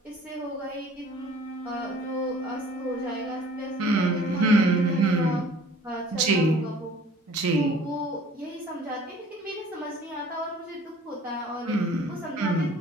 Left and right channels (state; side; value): normal; both; correlation 0.51